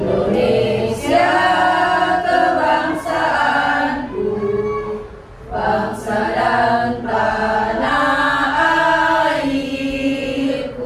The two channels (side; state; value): both; identical; correlation 1.00